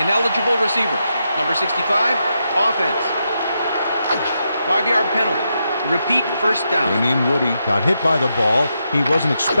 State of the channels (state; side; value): inverted; both; correlation -0.83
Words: Ineligible receiver. Number 65, offense. 5-yard penalty. Repeat 1st down. Damian Woody got hit by the ball. He wasn't